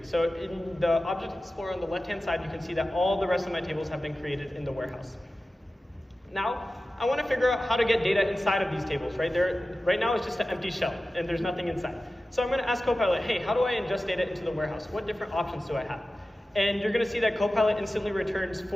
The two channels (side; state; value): both; normal; correlation 0.95